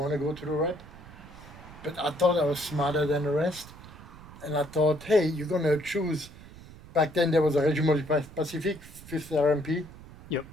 to go to the rep, but I thought I was smarter than the rest. And I thought, hey, you're going to choose... Back then there was a Régiment du Pacifique, 5th RMP. Yep.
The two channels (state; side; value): noise; right; rumble, 18 dB below the sound